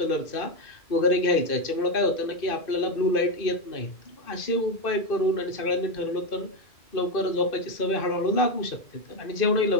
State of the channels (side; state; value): right; late; 2.5 ms